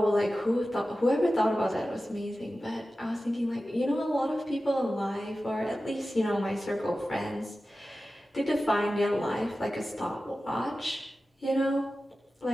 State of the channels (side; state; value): both; normal; correlation 0.94